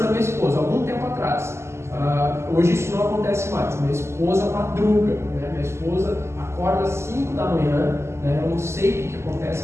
minha esposa, algum tempo atrás. Hoje isso não acontece mais, minha esposa madruga, né? Minha esposa acorda às 5 da manhã, né? Eu não sei o que acontece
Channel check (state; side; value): late; left; 0.13 ms